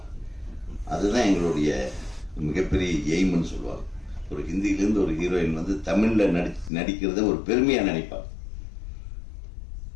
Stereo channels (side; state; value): right; drops out; at 6.7 s